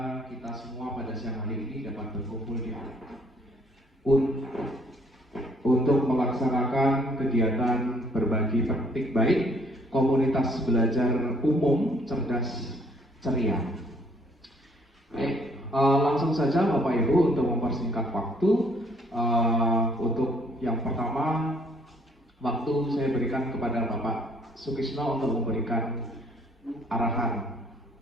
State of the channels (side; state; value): both; normal; correlation 0.64